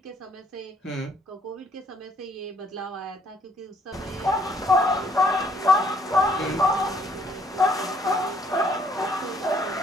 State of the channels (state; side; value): normal; both; correlation 0.65